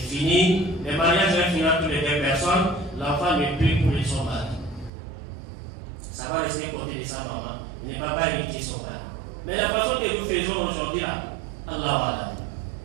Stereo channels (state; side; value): drops out; left; at 4.9 s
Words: fini. Le mariage va finir entre les 2 personnes. L'enfant ne peut pour son mari. Ça va rester côté de sa maman. Il ne va pas hériter son mari. Mais la façon que nous faisons aujourd'hui là, Allah.